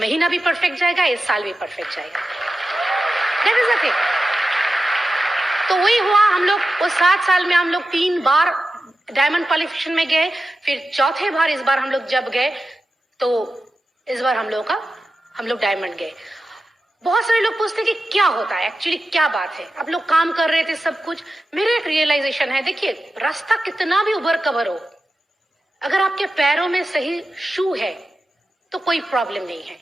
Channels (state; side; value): normal; both; correlation 0.92